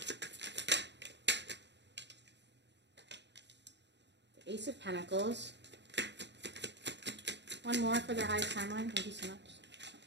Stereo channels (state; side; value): late; left; 0.51 ms